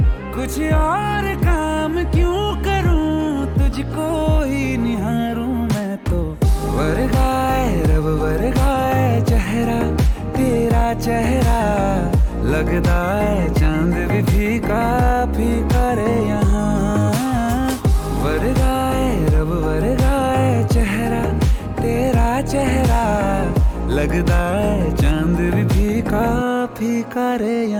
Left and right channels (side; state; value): both; identical; correlation 1.00